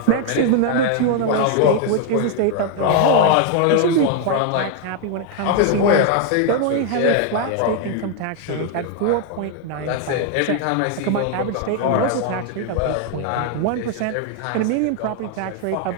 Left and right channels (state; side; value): different; both; correlation 0.01